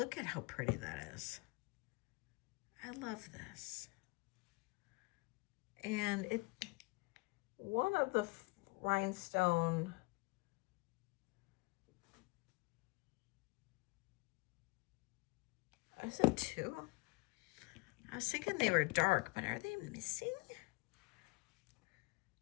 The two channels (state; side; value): quieter; right; 26.3 dB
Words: at how pretty that is. I love this. And it, one of the rhinestone, is it two? I was thinking they were dark, but are they missing?